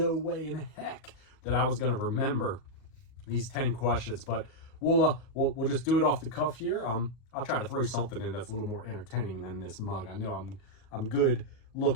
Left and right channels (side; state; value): right; late; 38 ms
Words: way in heck that I was going to remember these 10 questions, but we'll just do it off the cuff here. I'll try to throw something in that's a little more entertaining than this mug. I know I'm good